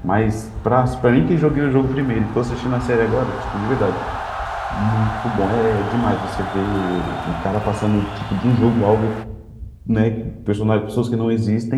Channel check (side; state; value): both; identical; correlation 1.00